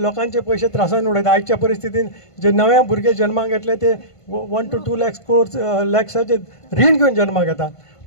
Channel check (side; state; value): right; late; 1.5 ms